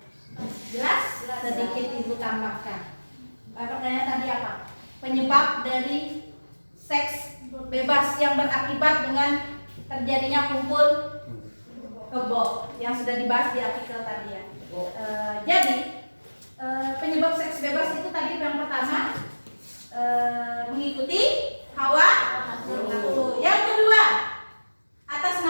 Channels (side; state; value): both; inverted; correlation -1.00